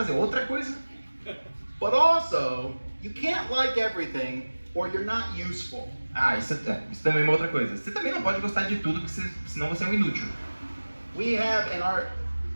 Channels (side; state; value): both; inverted; correlation -1.00